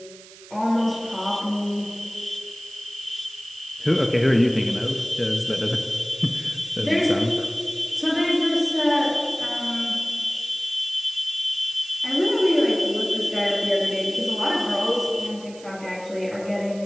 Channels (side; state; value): right; noise; hiss, 20 dB below the sound